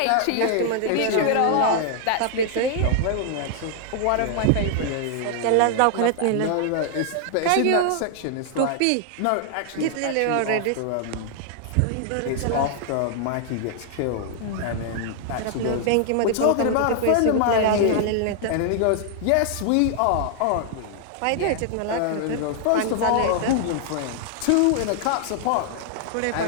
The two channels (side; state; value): both; different; correlation 0.00